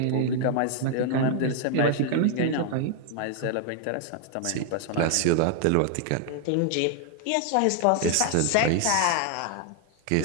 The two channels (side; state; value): both; different; correlation 0.00